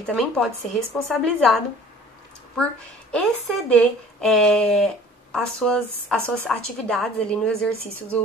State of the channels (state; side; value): normal; both; correlation 0.48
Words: pode ser responsabilizado por exceder as suas atividades ali no exercício